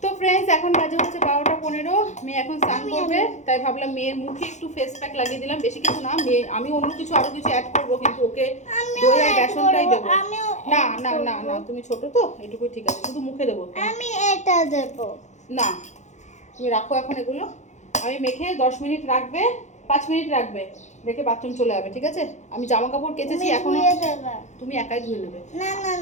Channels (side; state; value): right; late; 0.34 ms